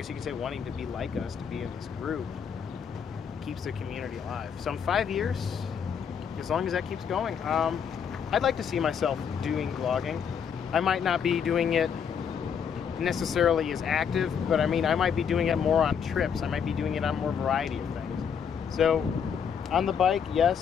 you could say wanting to be like us, to be in this group, keeps the community alive. So in 5 years, as long as that keeps going, I'd like to see myself doing vlogging. I might not be doing it necessarily as active, but I mean, I might be doing it more on trips. I might be doing it on more variety of things. So on the bike,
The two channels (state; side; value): quieter; right; 7.3 dB